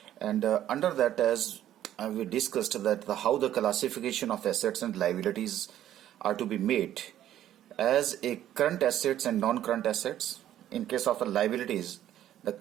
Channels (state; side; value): quieter; left; 11.9 dB